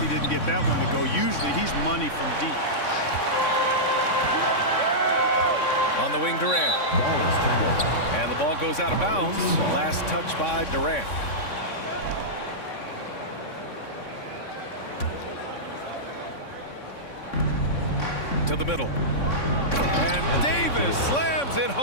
he didn't get that one to go. Usually he's money from deep. On the wing, Durant. And the ball goes out of bounds. Last touch by Durant. To the middle. And Davis slams it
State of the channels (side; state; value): right; late; 3.6 ms